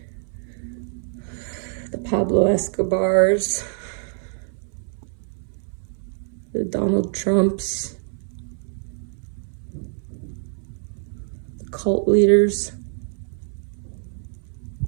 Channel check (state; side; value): silent; left; 59 dB below the other